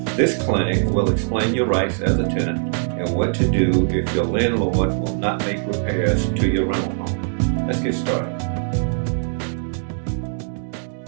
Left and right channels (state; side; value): silent; left; digital silence